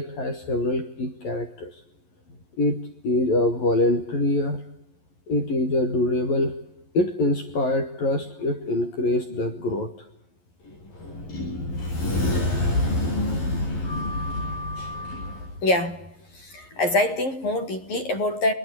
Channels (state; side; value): late; right; 11 ms